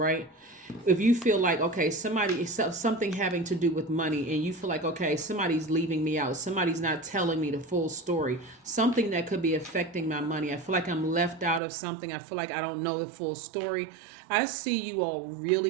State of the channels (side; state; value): left; drops out; at 11.6 s